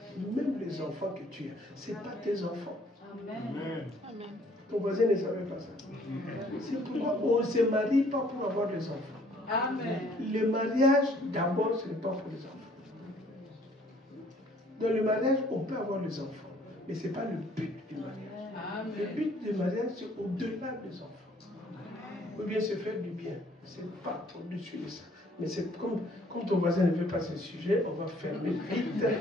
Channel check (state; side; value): normal; both; correlation 0.60